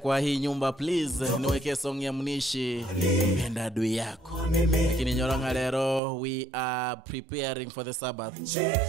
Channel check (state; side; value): drops out; left; at 6.0 s